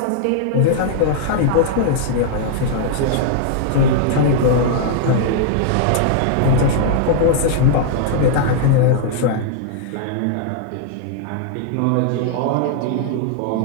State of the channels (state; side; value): different; both; correlation -0.01